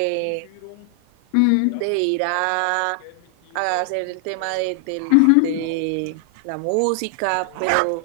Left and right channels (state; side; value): different; both; correlation 0.00